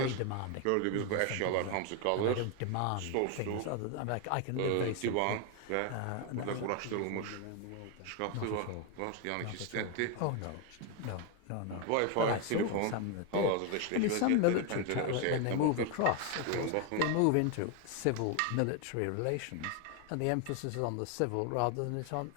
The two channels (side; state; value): both; different; correlation 0.01